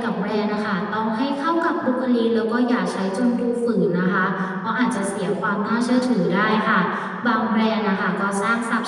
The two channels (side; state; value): both; identical; correlation 1.00